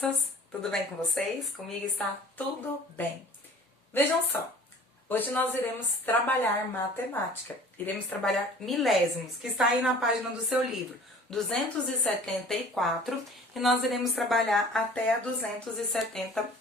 Tudo bem com vocês? Comigo está tudo bem. Vejam só, hoje nós iremos trabalhar matemática. Iremos trabalhar milésimos, que está aí na página do seu livro, 274, e nós iremos trabalhar até a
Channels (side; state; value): both; normal; correlation 0.47